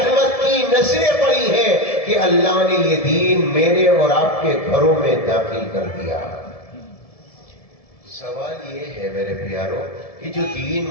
کی نظریں پڑی ہے کہ اللہ نے یہ دین میرے اور آپ کے گھروں میں داخل کر دیا۔ سوال یہ ہے میرے پیاروں کہ جو دین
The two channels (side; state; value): right; late; 1.7 ms